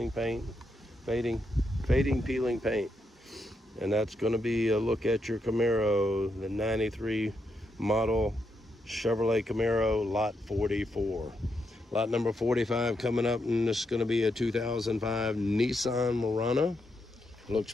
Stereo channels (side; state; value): both; normal; correlation 0.81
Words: paint, fading peeling paint. And that's going to be a look at your Camaro, the 93 model Chevrolet Camaro, lot 44. Lot number 45 coming up, and this is going to be a 2005 Nissan Murano. Looks